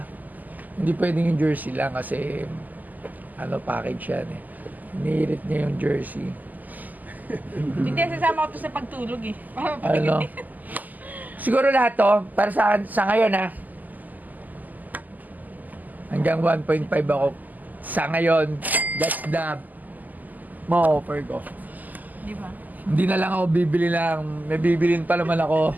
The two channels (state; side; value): late; left; 0.082 ms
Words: Hindi pwedeng yung jersey lang kasi package yan eh. Nihirit niya yung jersey. Hindi, sasama ko to sa pagtulog eh. Para Ano? Siguro lahat to, para sa ngayon ha. Hanggang 1.5 ako. Sa ngayon, that's the ma-offer ko. Di ba? Hindi na lang ako bibili lang. May bibilin pa naman ako.